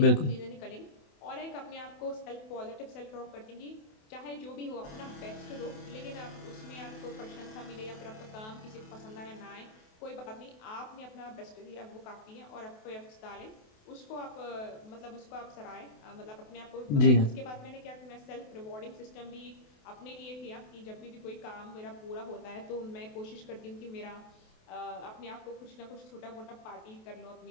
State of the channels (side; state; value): right; late; 28 ms